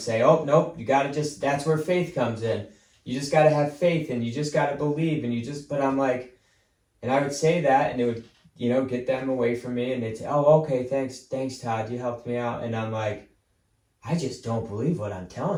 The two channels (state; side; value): identical; both; correlation 1.00